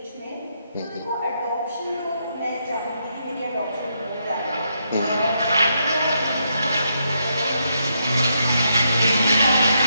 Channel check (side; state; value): both; inverted; correlation -0.79